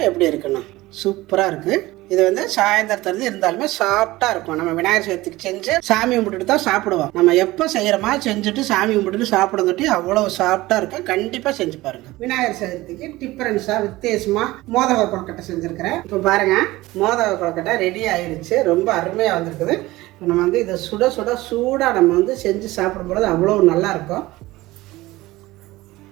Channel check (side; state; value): left; quieter; 18.7 dB